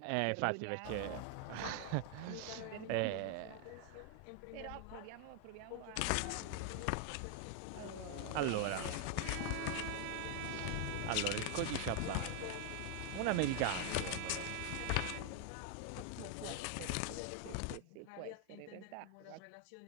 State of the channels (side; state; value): both; different; correlation 0.00